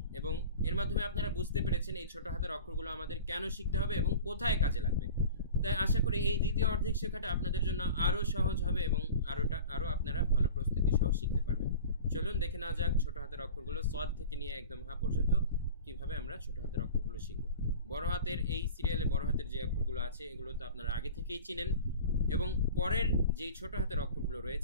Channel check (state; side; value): inverted; both; correlation -0.37